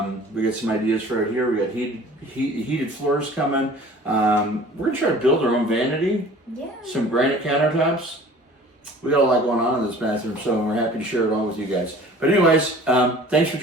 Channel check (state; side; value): normal; both; correlation 0.46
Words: We got some ideas for it here. We got heated floors coming. We're going to try to build our own vanity. Yeah. Some granite countertops. we got a lot going on in this bathroom, so we're happy to share it all with you guys. But anyways, thanks for